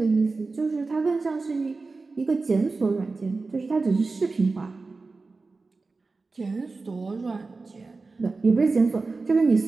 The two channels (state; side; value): quieter; left; 3.9 dB